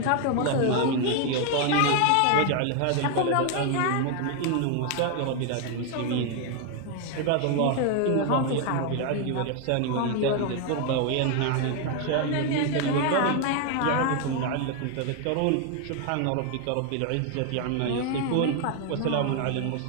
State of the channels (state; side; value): different; both; correlation 0.01